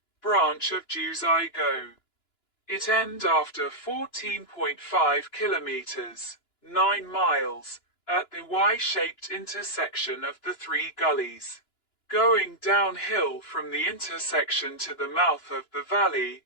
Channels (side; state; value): right; late; 2.9 ms